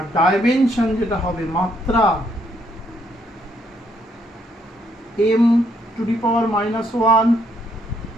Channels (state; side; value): normal; both; correlation 0.72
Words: ডাইমেনশন যেটা হবে মাত্রা m to the power -1